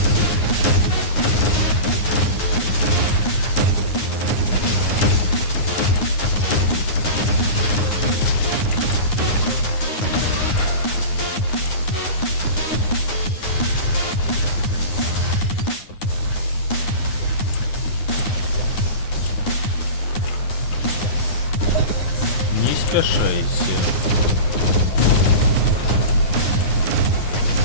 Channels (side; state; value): right; late; 9.6 ms